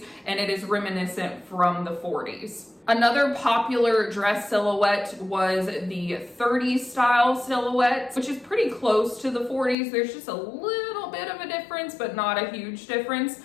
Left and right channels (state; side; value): drops out; right; at 9.8 s